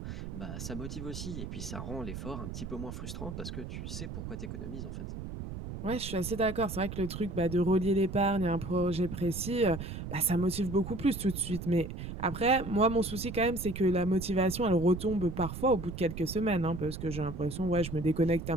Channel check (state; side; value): noise; right; rumble, 8 dB below the sound